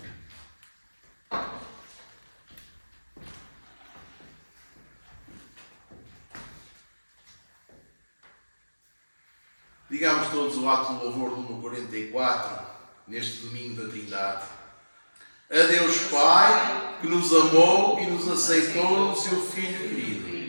Digamos todos o ato de louvor número 44, neste domingo da Trindade. A Deus Pai, que nos amou e nos aceitou no seu Filho querido.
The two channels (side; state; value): both; inverted; correlation -1.00